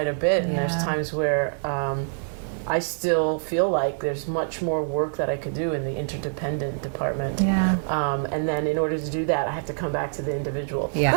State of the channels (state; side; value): silent; left; digital silence